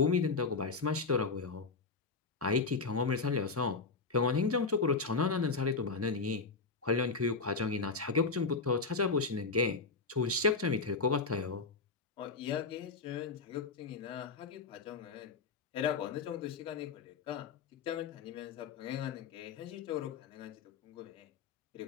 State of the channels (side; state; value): right; quieter; 4.4 dB